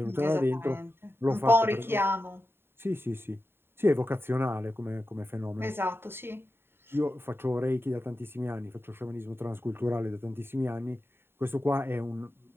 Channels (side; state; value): left; late; 0.11 ms